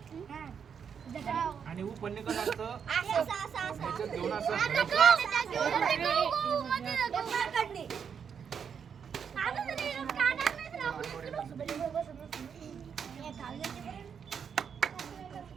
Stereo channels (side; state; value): left; quieter; 7.1 dB